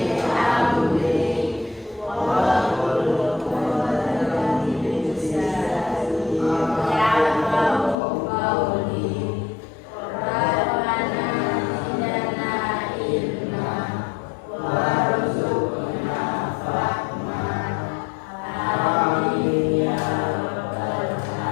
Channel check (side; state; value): right; drops out; at 8.0 s